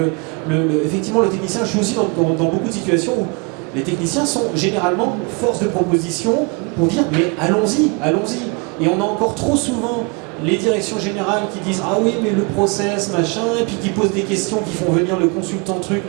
effectivement le technicien, je suis aussi dans beaucoup de situations où les techniciens sont généralement force de proposition pour dire mais allons-y. Et on a encore trop souvent les directions générales qui disent ah oui mais le process machin, et puis qui posent des questions, qui font venir le consultant truc,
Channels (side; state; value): left; quieter; 31.8 dB